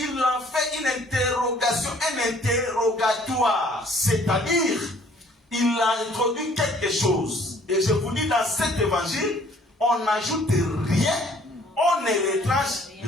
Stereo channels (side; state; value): both; normal; correlation 0.58